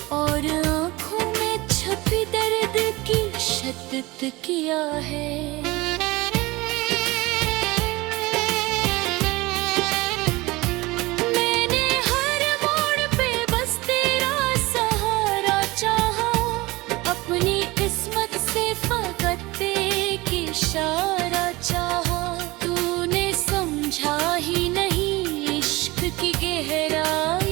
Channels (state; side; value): quieter; left; 21.5 dB